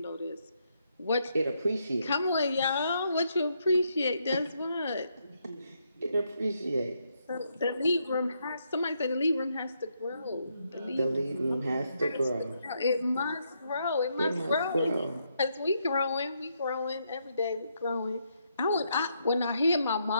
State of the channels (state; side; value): inverted; both; correlation -0.77